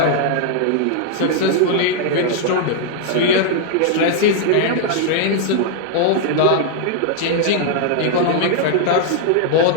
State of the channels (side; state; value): both; different; correlation -0.01